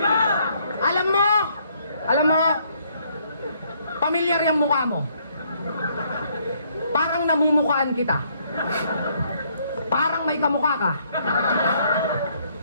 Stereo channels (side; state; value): both; inverted; correlation -0.68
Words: Alam mo, pamilyar yung mukha mo. Parang namumukhaan kita. Parang may kamukha ka.